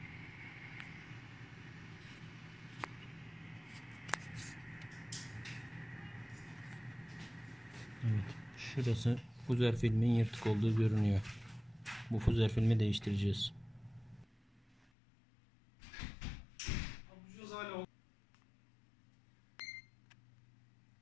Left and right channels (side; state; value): right; drops out; at 14.9 s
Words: Evet, şurası fuzer filmin yırtık olduğu görünüyor. Bu fuzer filmi değiştireceğiz.